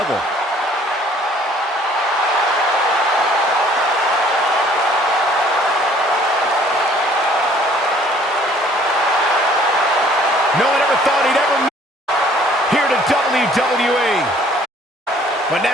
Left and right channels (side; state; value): both; normal; correlation 0.57